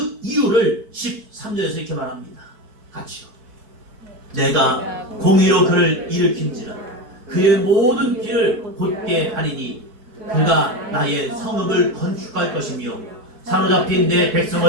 이유를 13절에서 이렇게 말합니다. 같이요. 내가 공의로 그를 일으킨지라 그의 모든 길을 곧게 하리니 그가 나의 성읍을 건축할 것이며 사로잡힌 내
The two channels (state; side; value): late; left; 4.6 ms